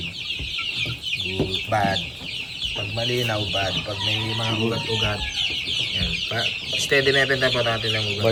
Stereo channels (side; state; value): both; identical; correlation 1.00